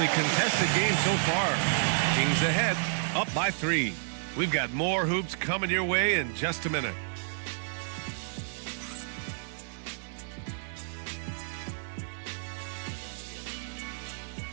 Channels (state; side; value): silent; left; digital silence